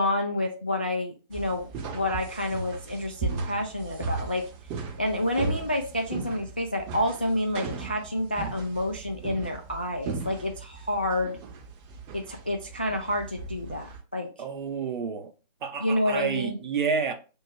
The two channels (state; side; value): inverted; both; correlation -0.59